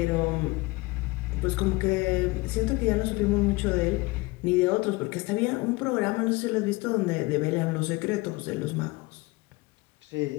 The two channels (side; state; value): right; quieter; 23.3 dB